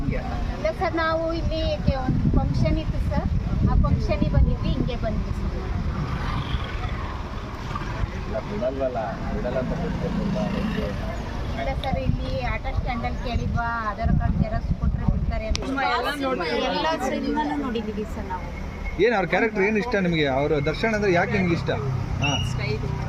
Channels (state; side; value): identical; both; correlation 1.00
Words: ಇಲ್ಲ ಸರ್, ನಾವು ಇಲ್ಲಿ ಒಂದು ಫಂಕ್ಷನ್ ಇತ್ತು ಸರ್, ಆ ಫಂಕ್ಷನಿಗೆ ಬಂದಿದ್ವಿ, ಹಿಂಗೆ ಬಂದ್ವಿ ಸರ್. ಬಿಡಲ್ವಲ್ಲ ಬಿಡಲ್ಲ ಅಂತ ಗೊತ್ತಿಲ್ಲ. ಇಲ್ಲ ಸರ್, ಇಲ್ಲಿ ಆಟೋ ಸ್ಟ್ಯಾಂಡಲ್ಲಿ ಕೇಳಿದ್ವಾ ಆಧಾರ್ ಕಾರ್ಡ್ ಜೆರಾಕ್ಸ್ ಕೊಟ್ಟರೆ ಬಿಡ್ತಾರೆ ಅಂತ ಎಲ್ಲ ಸಿನಿಮಾನು ನೋಡಿದ್ದೀವಿ ಸರ್ ನಾವು. ಏನು ಅವ್ರ ಕ್ಯಾರೆಕ್ಟರ್ ಏನು ಇಷ್ಟ ನಿಮಗೆ? ಅವರು ದರ್ಶನ್ ಅಂದರೆ ಯಾಕೆ ನಿಮ್ಗೆ ಇಷ್ಟ? ಹಾಂ,